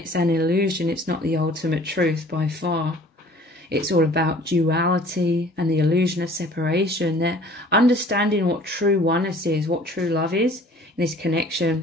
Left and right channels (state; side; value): normal; both; correlation 0.51